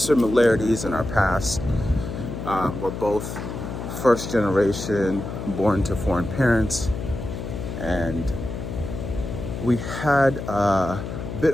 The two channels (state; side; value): noise; left; hum, 7 dB below the sound